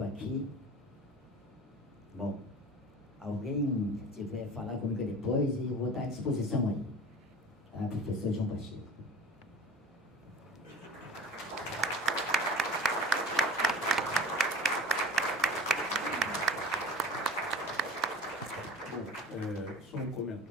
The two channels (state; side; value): normal; both; correlation 0.40